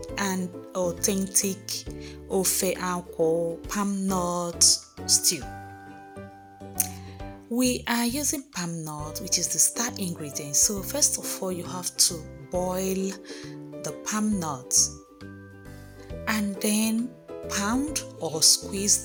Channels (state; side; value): identical; both; correlation 1.00